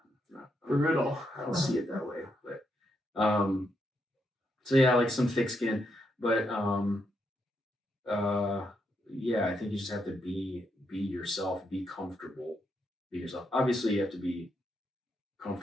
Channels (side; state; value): both; normal; correlation 0.79